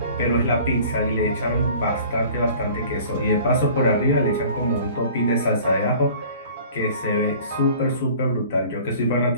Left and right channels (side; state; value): both; inverted; correlation -0.47